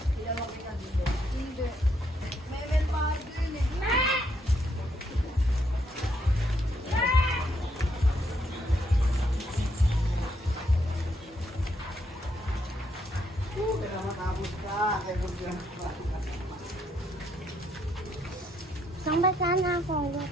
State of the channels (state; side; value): normal; both; correlation 0.74